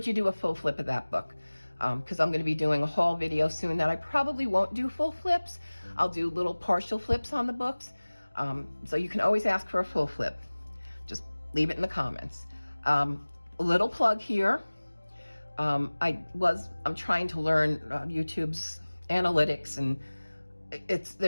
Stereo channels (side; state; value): both; inverted; correlation -1.00